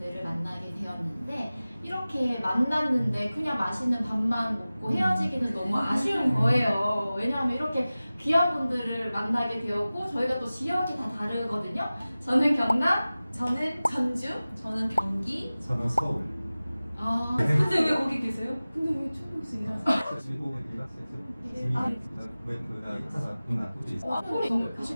만나게 되었는데 이렇게 만났는데 그냥 맛있는 밥만 먹고 헤어지기는 너무 아쉬운 거예요. 왜냐하면 이렇게 귀한 분들을 만나게 되었고 저희가 또 지역이 다 다르거든요. 저는 경남, 저는 전주. 저는 경기. 저는 서울. 근데 왜 거기 계세요? 근데 왜 초등학생 일하세요? 그리고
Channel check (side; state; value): both; inverted; correlation -0.97